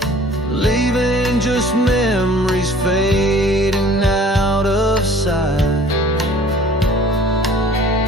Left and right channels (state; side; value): normal; both; correlation 0.51